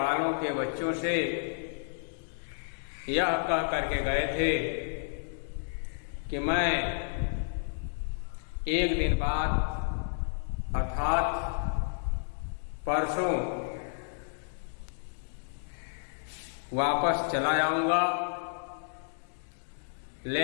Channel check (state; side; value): silent; right; digital silence